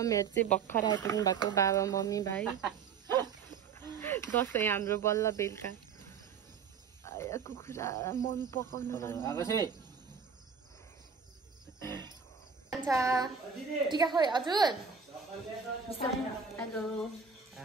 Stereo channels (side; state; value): left; quieter; 6.3 dB